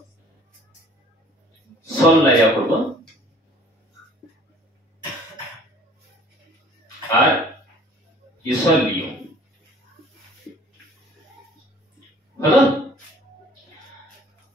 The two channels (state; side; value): normal; both; correlation 0.53